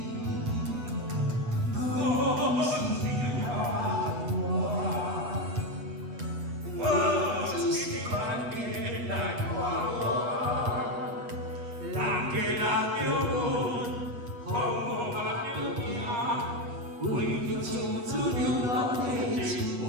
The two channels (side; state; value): left; late; 8.3 ms